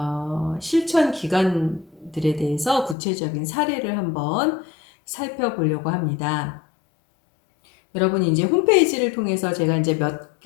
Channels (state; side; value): drops out; right; at 3.0 s